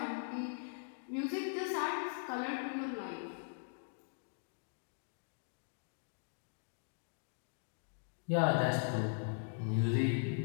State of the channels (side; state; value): right; silent; digital silence